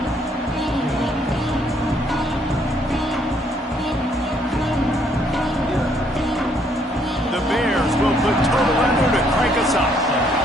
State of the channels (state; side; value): normal; both; correlation 0.68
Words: The Bears will put total under to crank us up.